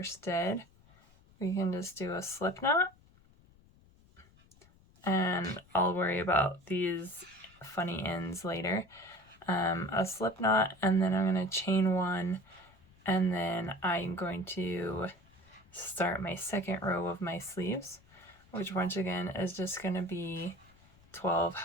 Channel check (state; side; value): noise; left; rumble, 28 dB below the sound